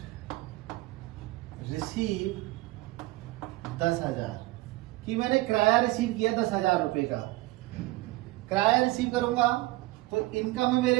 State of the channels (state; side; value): quieter; left; 20.0 dB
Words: रिसीव 10,000 कि मैंने किराया रिसीव किया 10,000 रुपए का। किराया रिसीव करूंगा तो इनकम है